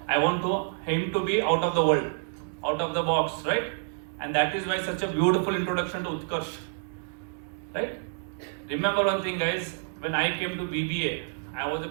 I want him to be out of the world, out of the box, right? And that is why such a beautiful introduction to Utkarsh, right? Remember one thing, guys, when I came to BBA, I was a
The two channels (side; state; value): left; silent; 59 dB below the other